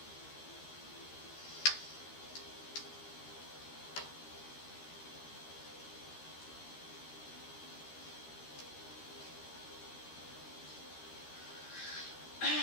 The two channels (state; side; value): late; right; 13 ms